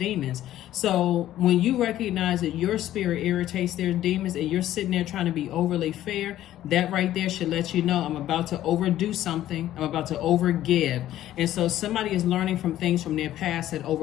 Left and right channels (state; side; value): quieter; right; 13.2 dB